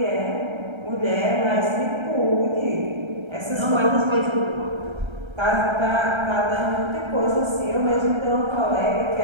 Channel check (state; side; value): late; left; 1.3 ms